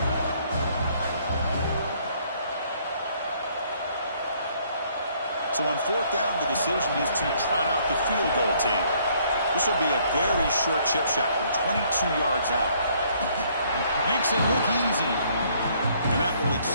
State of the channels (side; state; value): both; inverted; correlation -0.64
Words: So on fourth down, the decision is to trot out the field goal team. This will be a very short chip shot from 22 yards out. Makes it look easy. And that will